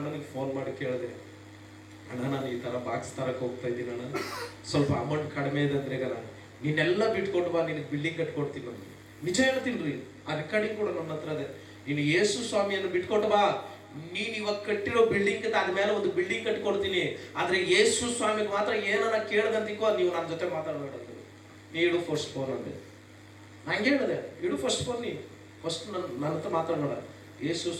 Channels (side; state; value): both; identical; correlation 1.00